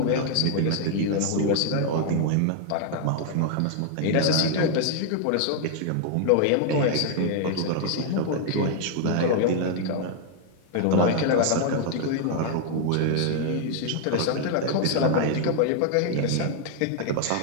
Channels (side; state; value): both; different; correlation 0.00